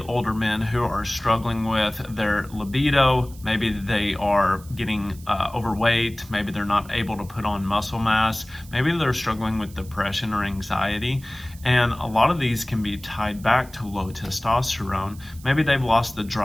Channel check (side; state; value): right; noise; hiss, 22 dB below the sound